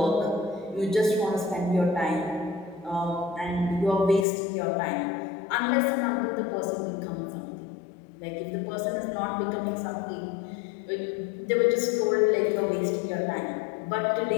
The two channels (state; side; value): drops out; right; at 4.2 s